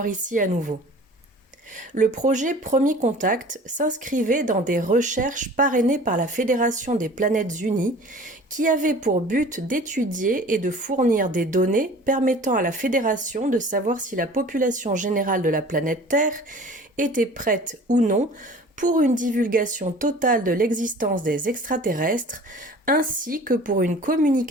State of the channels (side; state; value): both; normal; correlation 0.45